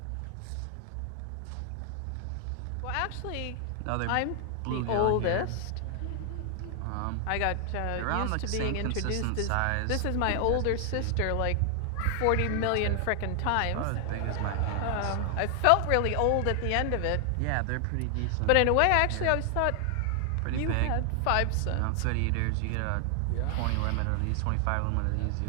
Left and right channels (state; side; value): different; both; correlation 0.00